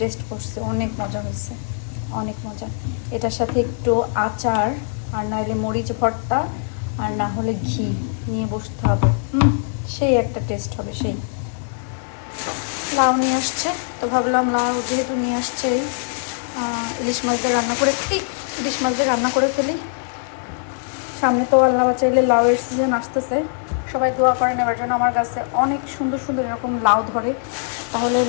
টেস্ট করছি, অনেক মজা হয়েছে, অনেক মজা। এটার সাথে একটু আচার আর নাহলে মরিচ ভর্তা আর না হলে ঘি নিয়ে বসতে হবে, সেই একটা টেস্ট হবে। সেই লাউ নিয়ে আসছে, তো ভাবলাম লাউ যেহেতু নিয়ে আসছে, ইলিশ মাছ দিয়ে রান্না করে ফেলি, ইলিশ মাছ দিয়ে রান্না করে ফেলি। সামনে তো আল্লাহ বাঁচাইলে লাউয়ের সিজন আসতেছে, সবাই দোয়া করে নেওয়ার জন্য। আমার কাছে অনেক সুন্দর সুন্দর এরকম লাউ ধরে, তাহলে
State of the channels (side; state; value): right; silent; digital silence